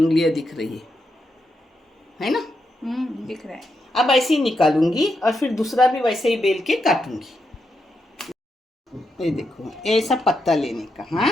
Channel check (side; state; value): both; normal; correlation 0.83